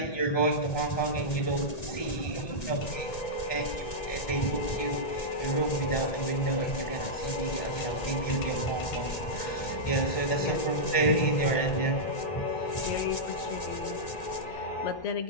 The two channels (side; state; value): right; late; 1.9 ms